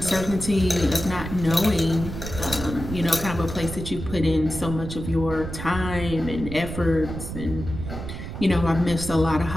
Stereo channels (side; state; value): right; noise; rumble, 8 dB below the sound